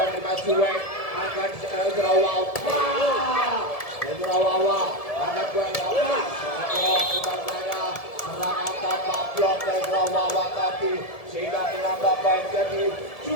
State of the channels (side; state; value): right; late; 1.7 ms